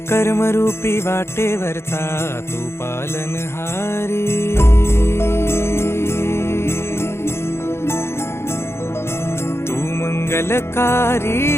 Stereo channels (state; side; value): late; right; 0.12 ms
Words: कर्मरूपी वाटेवरचा तू पालनहारी। तू मंगलकारी